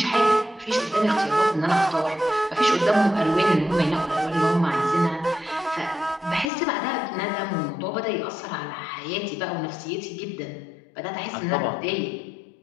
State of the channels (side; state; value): right; drops out; at 6.5 s